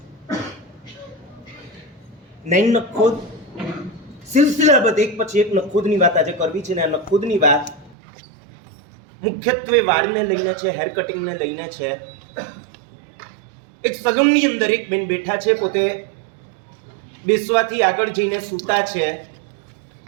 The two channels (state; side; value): drops out; left; at 8.0 s